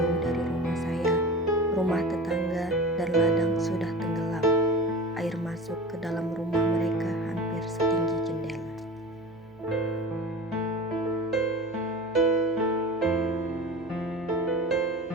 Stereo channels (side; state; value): left; noise; hum, 27 dB below the sound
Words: dari rumah saya, rumah tetangga dan ladang sudah tenggelam. Air masuk ke dalam rumah mereka hampir setinggi jendela.